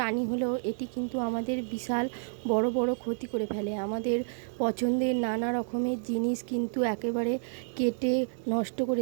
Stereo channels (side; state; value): left; silent; digital silence